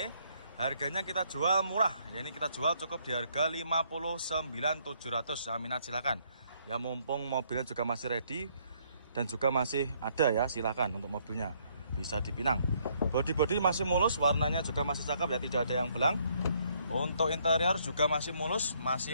Harganya kita jual murah. Ya ini kita jual cukup di harga 59.700 ya, minat silakan. Ya mumpung mobilnya juga masih ready dan juga masih ada ya, silakan untuk mobilnya bisa dipinang. Bodi masih mulus, warnanya juga masih cakep ya, tidak ada yang belang. Untuk interior juga masih mulus,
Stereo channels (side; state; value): both; inverted; correlation -0.69